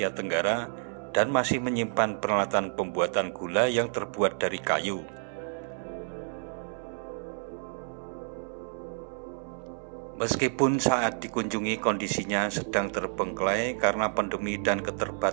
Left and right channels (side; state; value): left; silent; 58 dB below the other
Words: Tenggara dan masih menyimpan peralatan pembuatan gula yang terbuat dari kayu. Meskipun saat dikunjungi kondisinya sedang terbengkelai karena pandemi dan